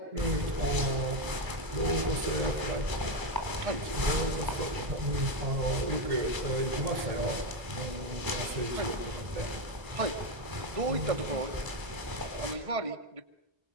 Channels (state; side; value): late; left; 1.0 ms